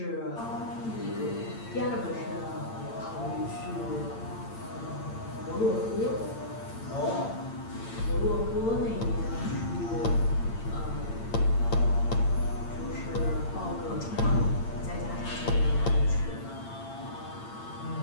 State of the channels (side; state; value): right; late; 8.8 ms